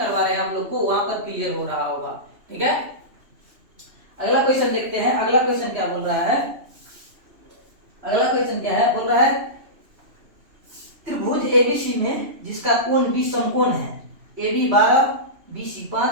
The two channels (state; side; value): late; left; 3.0 ms